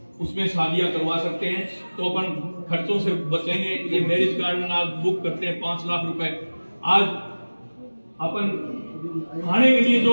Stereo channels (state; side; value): inverted; both; correlation -1.00